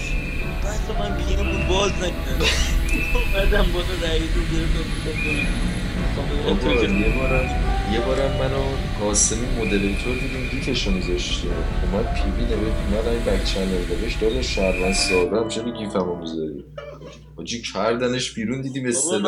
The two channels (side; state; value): both; identical; correlation 1.00